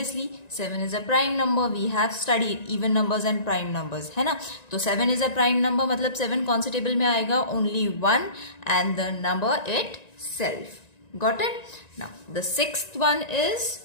7 is a prime number. We have studied even numbers and prime numbers, है ना? तो 7 is a prime number, मतलब 7 कौन से table में आएगा? Only 1 and the number itself. Got it? Now the sixth one is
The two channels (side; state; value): right; late; 1.9 ms